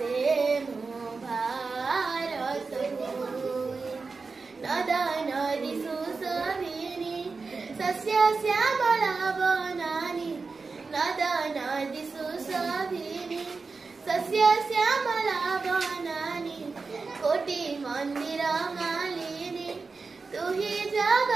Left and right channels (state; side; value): quieter; left; 4.4 dB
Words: मो भारत भूमि नदा नदी सुशोभिनी सस्य श्यामला वनानि नदा नदी सुशोभिनी सस्य श्यामला वनानि कोटि मंदिर मालिनी तु हि